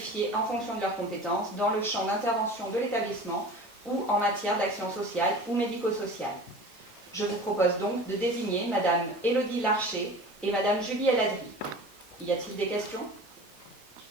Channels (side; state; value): right; noise; hiss, 27 dB below the sound